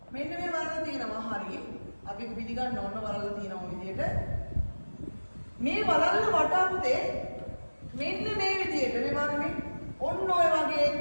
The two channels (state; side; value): inverted; both; correlation -1.00